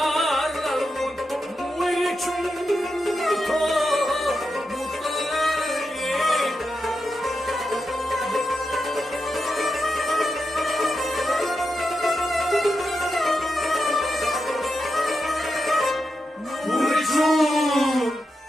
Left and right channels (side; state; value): both; normal; correlation 0.87